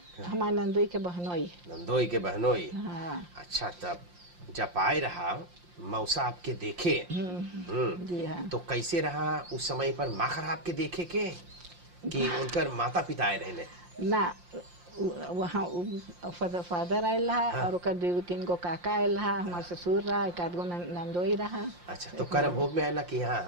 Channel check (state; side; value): late; left; 5.7 ms